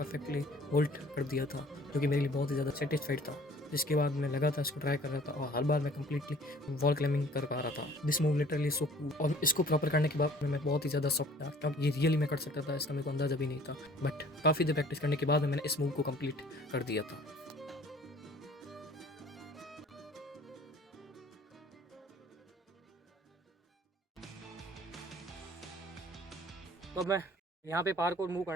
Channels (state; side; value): normal; both; correlation 0.52